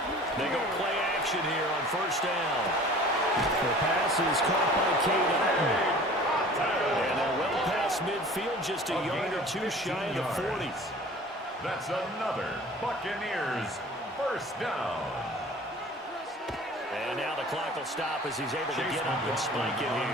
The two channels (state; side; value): normal; both; correlation 0.45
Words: They go play action here on 1st down. The pass is caught by Cade Otton. And they're well past midfield, just a yard or 2 shy of the 40. That's another Buccaneers first down. And now the clock will stop as he's able to get up and spike it